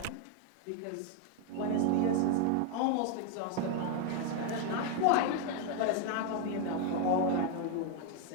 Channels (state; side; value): different; both; correlation 0.01